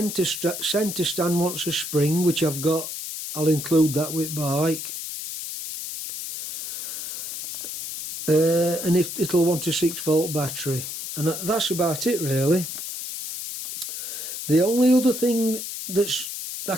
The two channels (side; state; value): left; noise; hiss, 7 dB below the sound